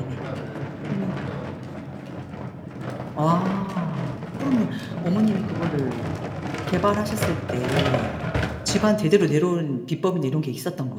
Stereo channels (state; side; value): identical; both; correlation 1.00